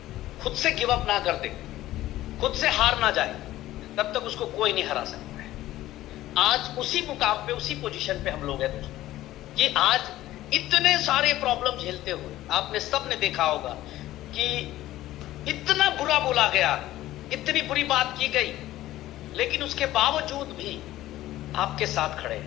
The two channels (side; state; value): right; quieter; 15.1 dB